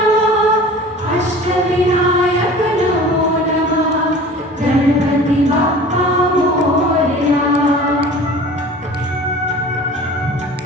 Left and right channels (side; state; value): both; normal; correlation 0.42